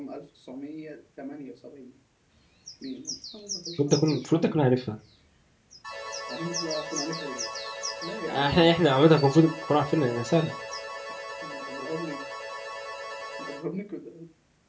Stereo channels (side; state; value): both; identical; correlation 1.00